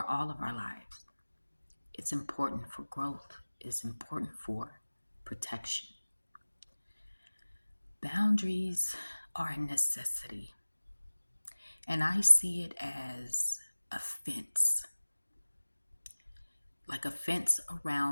all of our lives. It's important for growth, it's important for protection. Boundaries are a necessity, and I see it as a fence. Like a fence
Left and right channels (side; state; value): both; inverted; correlation -1.00